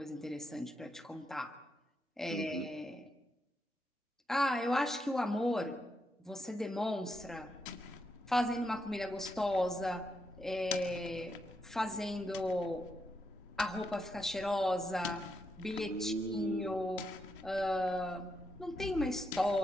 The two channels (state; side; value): normal; both; correlation 0.82